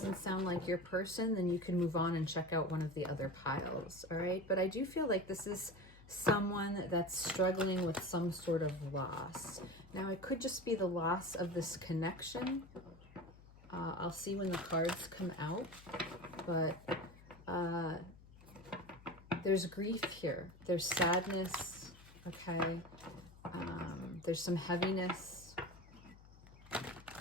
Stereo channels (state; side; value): noise; left; hum, 21 dB below the sound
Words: sound like your person, then you can move on and check out one of the other piles, all right? But I do feel like this is someone that's struggling with some sort of loss. Now, it could just be the loss of this connection. I'll see when the cards come out, but there's grief here. There's sadness, okay? There's some heaviness.